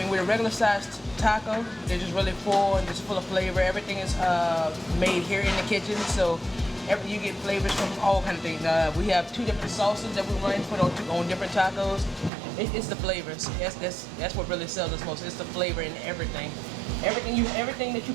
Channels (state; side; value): drops out; left; at 12.3 s